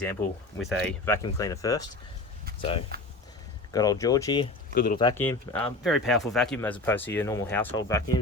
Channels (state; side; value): quieter; right; 3.0 dB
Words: with a vacuum cleaner first. So got old Georgie, good little vacuum, very powerful vacuum as opposed to your normal household